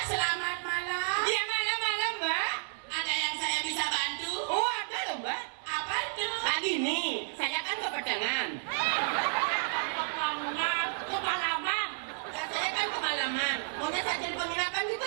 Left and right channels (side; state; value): left; silent; digital silence